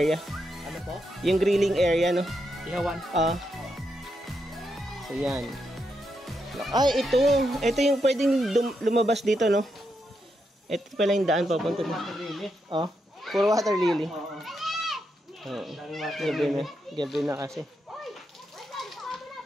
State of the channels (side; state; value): both; normal; correlation 0.82